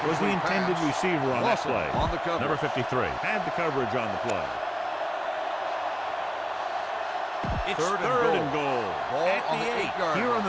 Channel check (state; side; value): identical; both; correlation 1.00